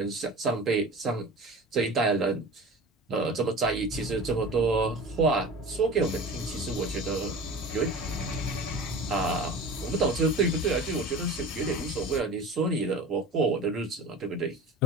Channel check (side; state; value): both; normal; correlation 0.35